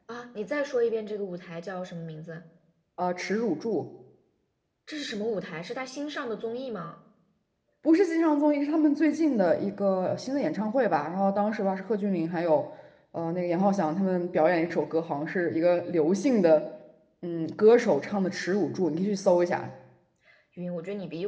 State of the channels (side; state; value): both; identical; correlation 1.00